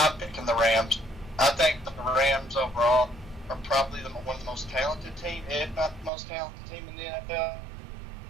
picking the Rams. I think the Rams overall are probably one of the most talented team, if not the most talented team in the NFL.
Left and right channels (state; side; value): drops out; left; at 6.1 s